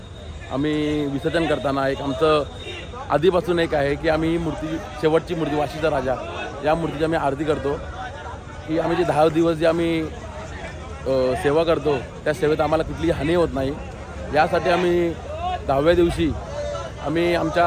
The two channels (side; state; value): both; identical; correlation 1.00